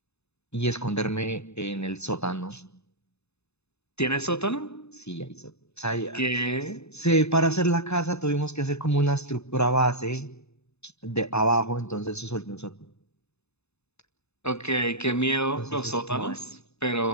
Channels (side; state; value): right; late; 0.80 ms